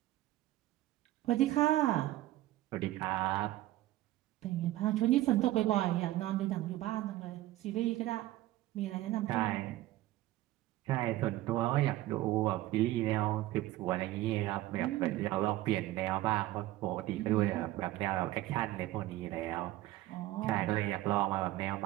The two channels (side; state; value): left; quieter; 16.0 dB